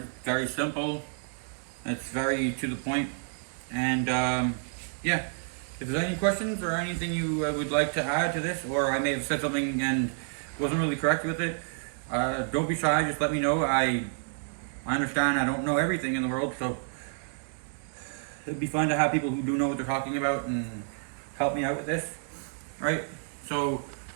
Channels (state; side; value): silent; left; digital silence